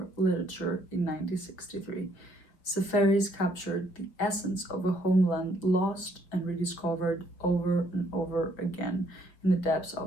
Literature in 1963. Seferis captured the essence of a homeland lost and rediscovered over and over again in the depths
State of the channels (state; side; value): late; right; 5.9 ms